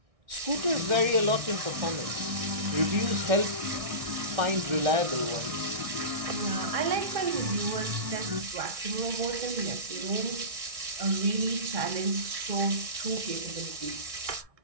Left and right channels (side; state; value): left; late; 1.6 ms